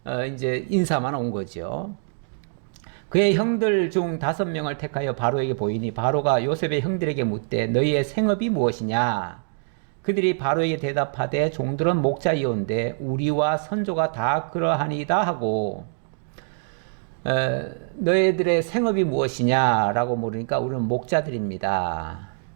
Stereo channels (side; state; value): left; silent; digital silence